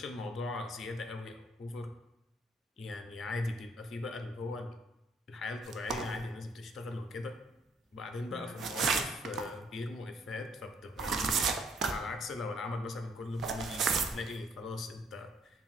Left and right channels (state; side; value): normal; both; correlation 0.65